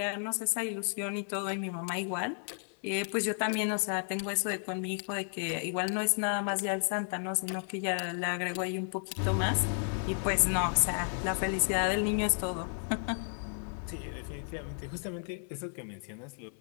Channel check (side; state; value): right; silent; digital silence